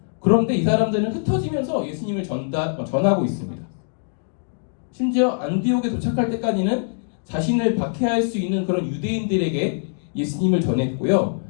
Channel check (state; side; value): silent; right; digital silence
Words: 그런데 이 사람들은 흩어지면서 예수님을 전하고 있습니다. 심지어 안디옥에 도착할 때까지는 자신을 박해할 수 있는 그런 유대인들에게 예수님을 전했고요.